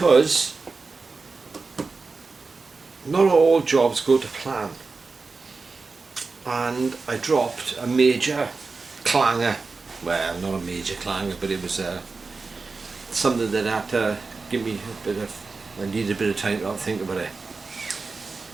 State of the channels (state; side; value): quieter; left; 4.2 dB